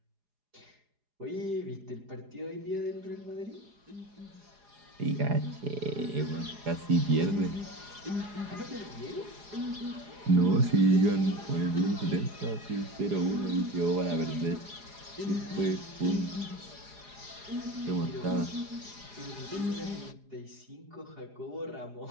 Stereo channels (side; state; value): left; late; 4.9 ms